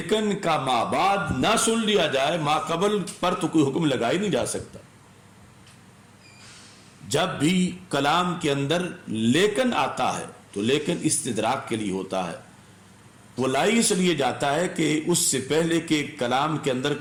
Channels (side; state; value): both; identical; correlation 1.00